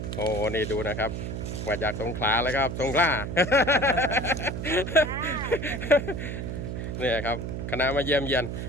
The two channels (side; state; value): right; noise; hum, 5 dB below the sound